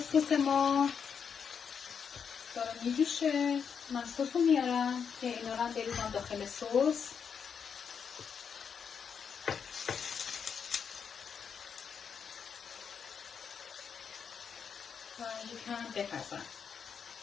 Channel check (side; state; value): right; quieter; 6.8 dB